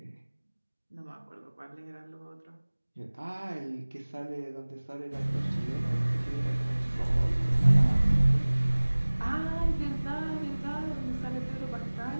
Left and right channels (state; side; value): inverted; both; correlation -1.00